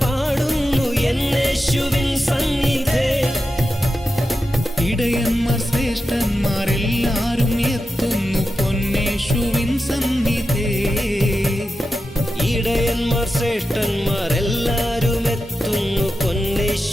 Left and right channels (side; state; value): both; normal; correlation 0.91